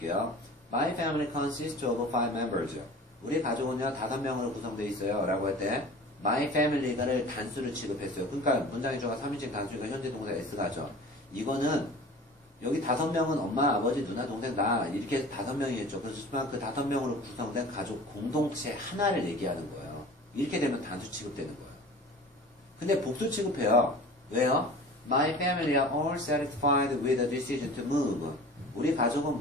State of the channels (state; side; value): normal; both; correlation 0.40